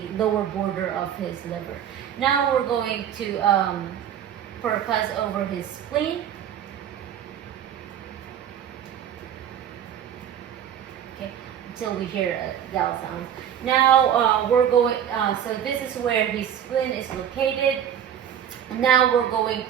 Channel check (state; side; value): quieter; left; 9.4 dB